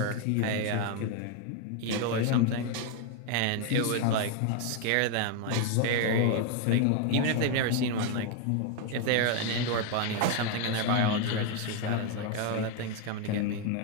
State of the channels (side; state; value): both; different; correlation 0.01